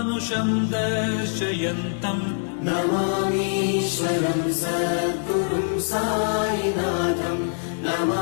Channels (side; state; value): right; silent; digital silence